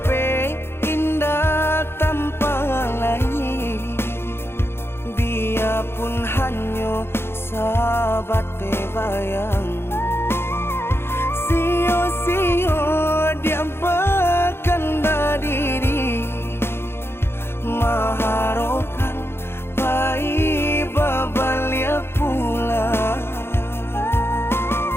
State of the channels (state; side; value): late; right; 0.11 ms